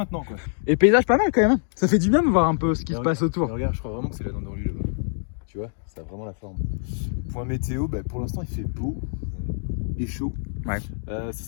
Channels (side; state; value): right; silent; digital silence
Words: quoi. Et paysage pas mal quand même, hein. Ça fait du bien de voir un peu ce qui Mais se passe autour. Mais regarde, je crois vraiment que c'est la dent de rue là-bas. Tu vois, ça a vraiment la forme. Point météo, bah, pour l'instant il fait beau et chaud. Ouais. Ce